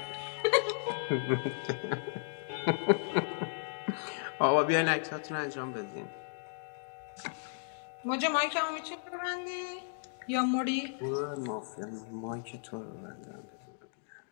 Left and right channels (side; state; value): right; silent; digital silence